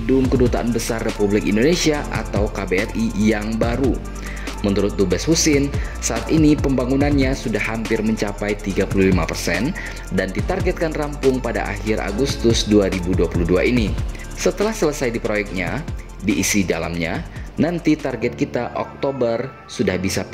Kedutaan Besar Republik Indonesia atau KBRI yang baru. Menurut Dubes Husin, saat ini pembangunannya sudah hampir mencapai 35% dan ditargetkan rampung pada akhir Agustus 2022 ini. Setelah selesai di proyeknya, diisi dalamnya, nanti target kita Oktober sudah bisa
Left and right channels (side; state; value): both; identical; correlation 1.00